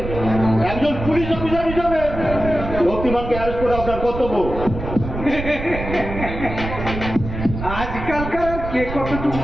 একজন পুলিশ অফিসার হিসাবে শক্তিমানকে অ্যারেস্ট করে আপনার কর্তব্য। আজকালকার কে কতটুকু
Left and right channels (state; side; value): noise; right; rumble, 7 dB below the sound